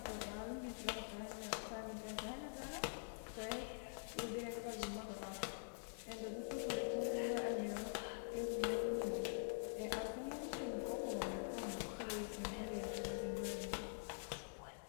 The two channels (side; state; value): right; silent; digital silence